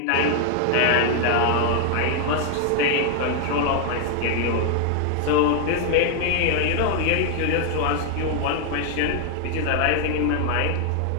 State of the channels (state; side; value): different; both; correlation 0.00